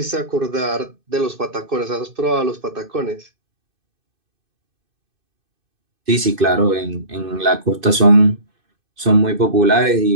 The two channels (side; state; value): left; late; 2.6 ms